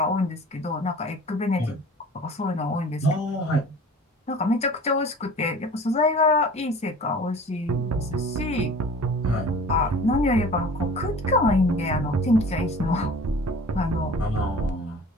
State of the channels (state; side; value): normal; both; correlation 0.43